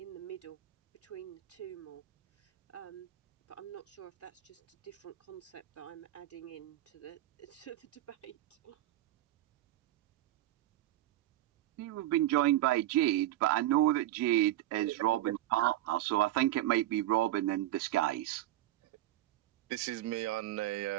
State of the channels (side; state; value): left; quieter; 14.9 dB